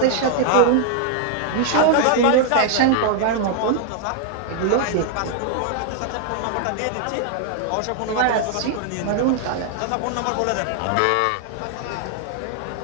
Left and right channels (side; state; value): both; different; correlation 0.00